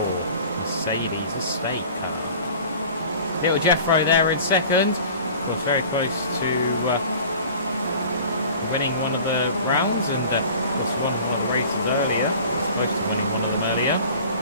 Mercedes estate car. Little Jeffro there in second, was very close to winning one of the rounds, and was one of the races earlier, supposed to winning one of them earlier.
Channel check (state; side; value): inverted; both; correlation -0.43